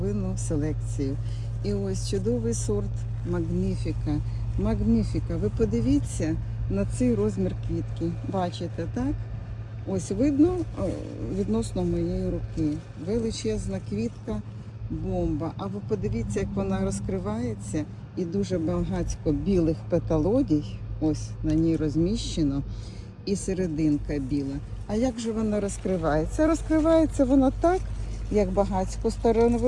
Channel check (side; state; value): both; identical; correlation 1.00